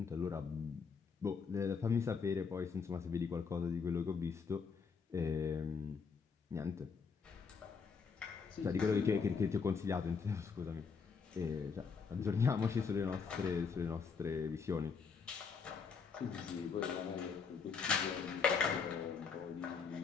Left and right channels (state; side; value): quieter; right; 5.6 dB